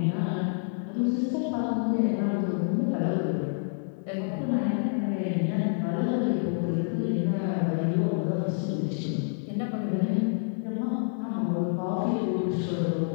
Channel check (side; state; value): right; silent; 58 dB below the other